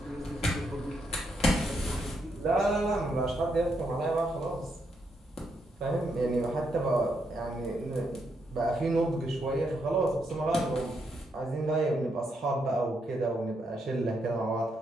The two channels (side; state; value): both; normal; correlation 0.79